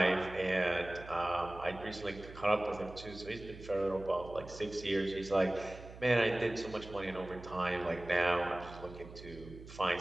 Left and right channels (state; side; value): noise; right; hum, 15 dB below the sound